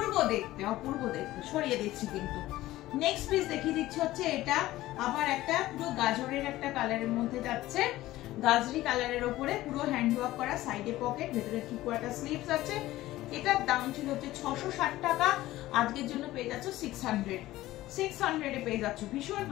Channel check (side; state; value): right; quieter; 16.3 dB